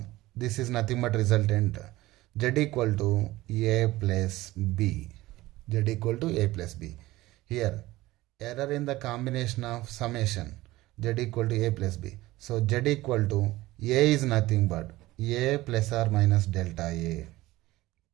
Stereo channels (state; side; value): quieter; left; 18.0 dB